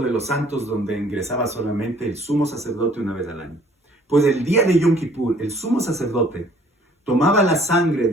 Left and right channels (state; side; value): normal; both; correlation 0.57